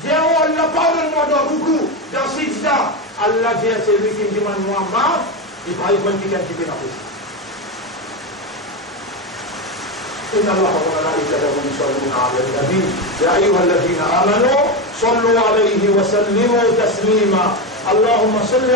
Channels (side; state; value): both; normal; correlation 0.14